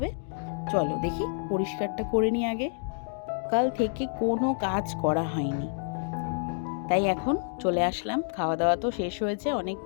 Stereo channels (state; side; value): silent; right; digital silence